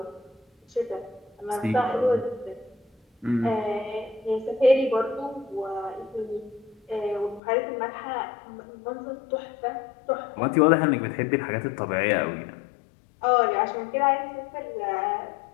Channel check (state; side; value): drops out; right; at 7.4 s